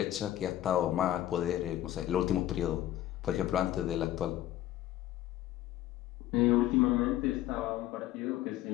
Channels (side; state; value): right; quieter; 13.5 dB